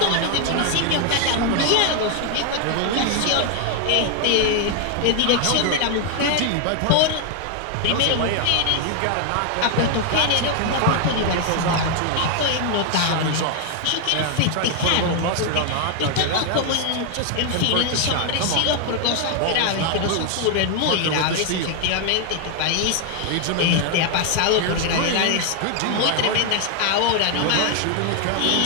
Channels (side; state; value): both; different; correlation 0.01